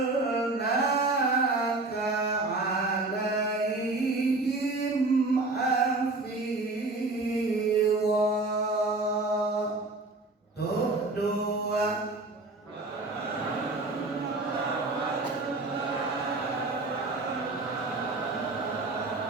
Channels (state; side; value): quieter; left; 3.2 dB